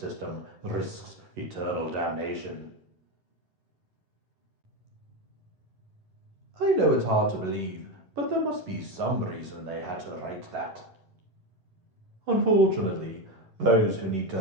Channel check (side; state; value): left; late; 11 ms